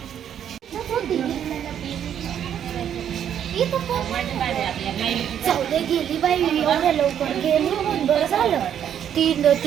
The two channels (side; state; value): left; quieter; 9.4 dB